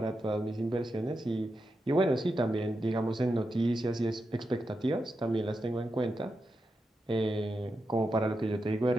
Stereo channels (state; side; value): normal; both; correlation 0.88